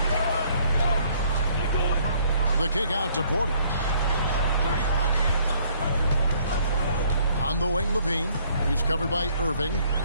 The kick out to Porter. On the wing, LaVine. He's covered by Irving.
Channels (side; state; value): both; inverted; correlation -0.63